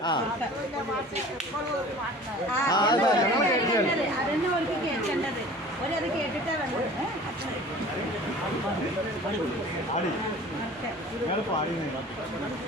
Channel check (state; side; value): normal; both; correlation 0.44